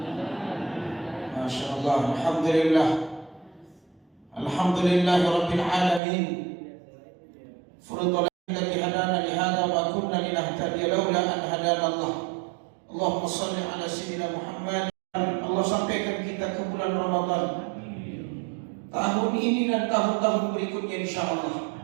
Masya Allah, Alhamdulillah. Alhamdulillahirabbil alamin. Furudul alladzi hadana li hadza wa kunna linahtadiya laula an hadana Allah. Allahumma shalli ala sayyidina Muhammad. Allah sampaikan kita ke bulan Ramadan tahun ini dan tahun-tahun berikutnya insyaallah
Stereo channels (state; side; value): drops out; left; at 6.0 s